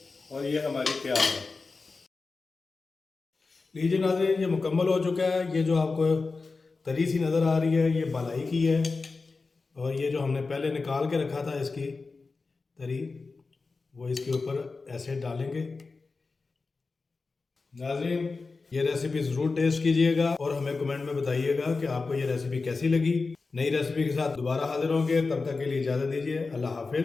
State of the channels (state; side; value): quieter; right; 4.1 dB